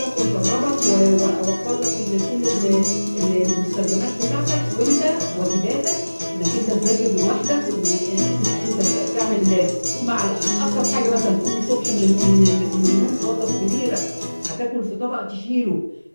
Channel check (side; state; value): both; inverted; correlation -1.00